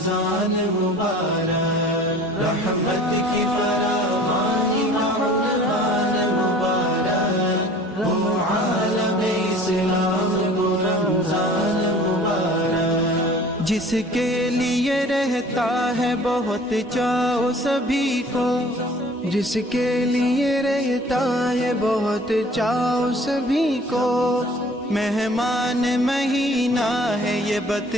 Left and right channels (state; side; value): normal; both; correlation 0.48